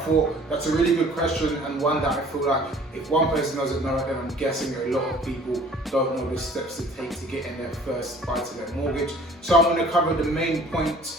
that's a really good question, and one that I feel like if one person doesn't know it, then I'm guessing a lot of people don't know the steps to take to get in their first buy-to-let mortgage. So I'm going to cover the main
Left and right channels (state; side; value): normal; both; correlation 0.52